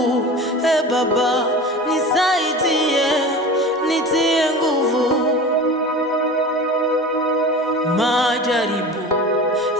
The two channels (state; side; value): normal; both; correlation 0.34